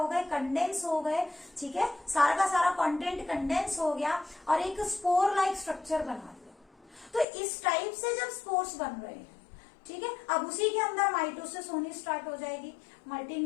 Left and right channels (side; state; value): right; drops out; at 7.2 s